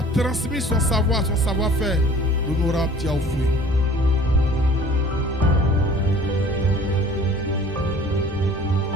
transmis son savoir, son savoir-faire, l'honorable Diaoufoué.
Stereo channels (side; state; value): both; normal; correlation 0.49